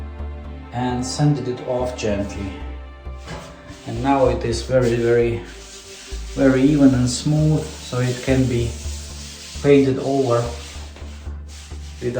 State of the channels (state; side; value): identical; both; correlation 1.00